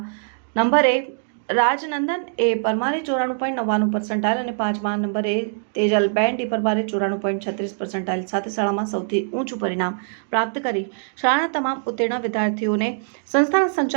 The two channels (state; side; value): silent; left; digital silence